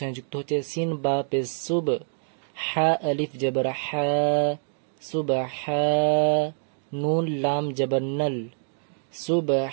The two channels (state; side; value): silent; left; digital silence